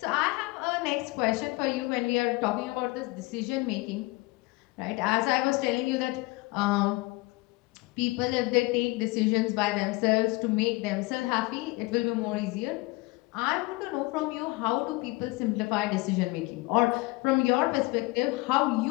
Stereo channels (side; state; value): right; quieter; 23.4 dB